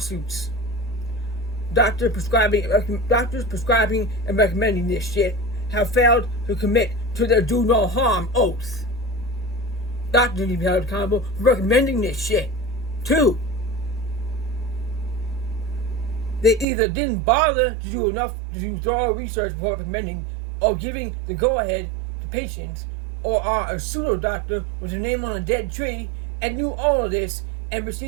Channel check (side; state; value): left; drops out; at 16.7 s